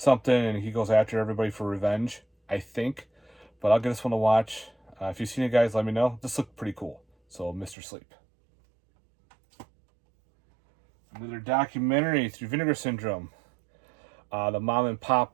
and he goes after everybody for revenge, I think. But I'll get this one to watch. If you've seen it, guys, let me know. This looked pretty cool. So, Mr. Sleep. Another documentary through Vinegar Syndrome. The mom and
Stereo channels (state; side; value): drops out; left; at 7.8 s